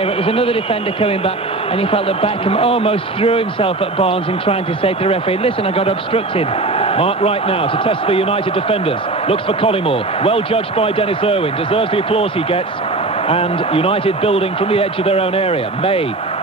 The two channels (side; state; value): left; quieter; 3.2 dB